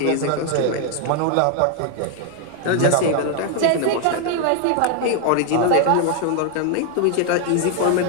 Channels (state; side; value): different; both; correlation 0.00